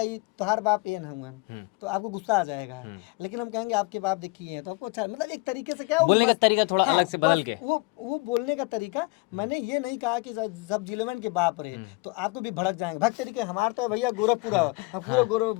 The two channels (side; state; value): right; quieter; 25.4 dB